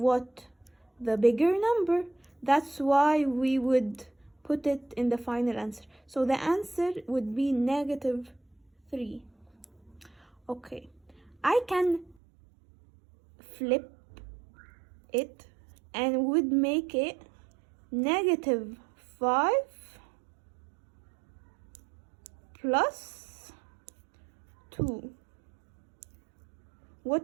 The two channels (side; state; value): left; drops out; at 12.2 s